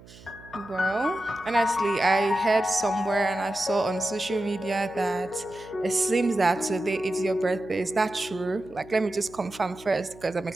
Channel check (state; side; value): noise; right; hum, 21 dB below the sound